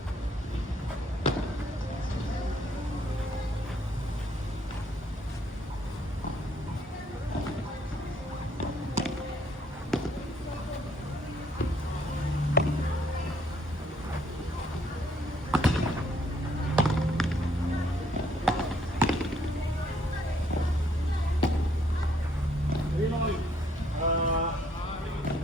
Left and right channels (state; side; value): normal; both; correlation 0.67